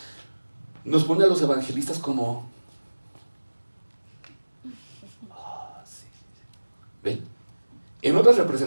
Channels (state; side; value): inverted; both; correlation -1.00